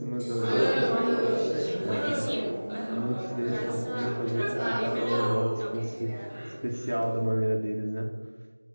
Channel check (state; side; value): inverted; both; correlation -1.00